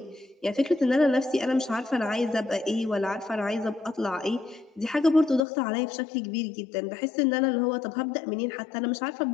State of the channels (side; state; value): right; drops out; at 5.4 s